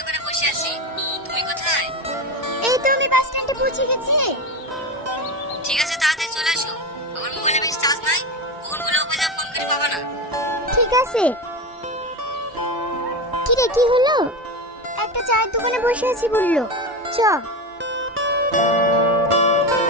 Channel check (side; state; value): both; normal; correlation 0.20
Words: বসে আছি। তুমি কোথায়? এই তো আমি বাস স্ট্যান্ডে পৌঁছে গেছি। ঠিক আছে, তাড়াতাড়ি চলে আসো। আমার মোবাইলে বেশি চার্জ নাই, ফোনগুলো অফ হয়ে যাবে, ফোন করে পাবা না। ঠিক আছে। কি রে, কি হলো? একটা চায়ের দোকানে বসে আছি বললো, চ।